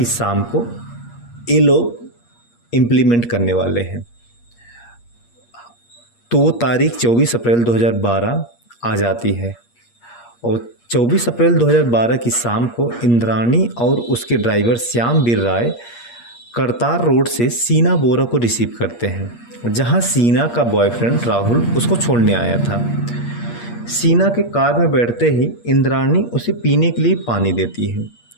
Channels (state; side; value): late; right; 8.5 ms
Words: शाम को ये लोग इम्प्लीमेंट करने वाले हैं। तो वो तारीख 24 अप्रैल 2012 आ जाती है और 24 अप्रैल 2012 की शाम को इंद्राणी और उसके ड्राइवर श्यामवीर राय करतार रोड से सीना बोरा को रिसीव करते हैं, जहां सीना का बॉयफ्रेंड राहुल उसको छोड़ने आया था। सीना के कार में बैठते ही इंद्राणी उसे पीने के लिए पानी देती है,